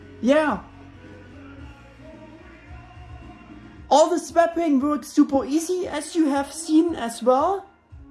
Yeah. All the swapping works super easy, as you have seen as well.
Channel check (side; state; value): both; identical; correlation 1.00